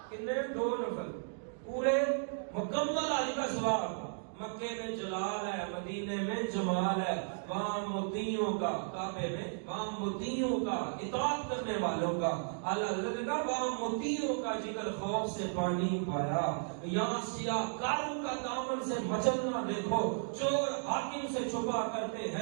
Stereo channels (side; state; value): left; silent; digital silence